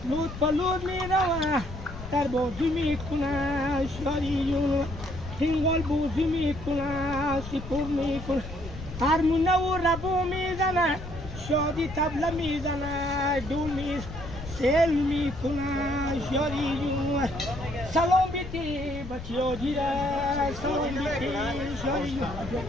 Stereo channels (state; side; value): noise; left; rumble, 11 dB below the sound